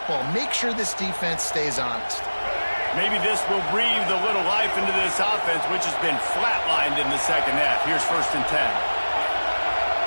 Make sure this defense stays honest. Maybe this will breathe a little life into this offense, which has been flatlined in the second half. Here's 1st and 10.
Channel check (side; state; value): both; inverted; correlation -1.00